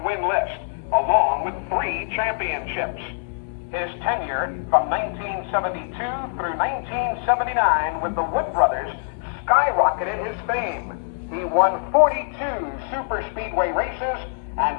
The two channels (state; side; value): silent; right; digital silence